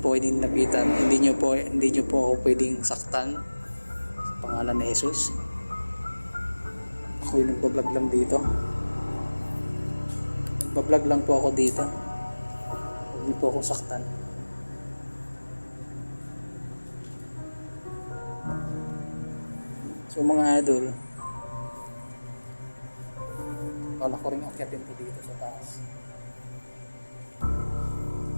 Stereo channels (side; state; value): both; inverted; correlation -1.00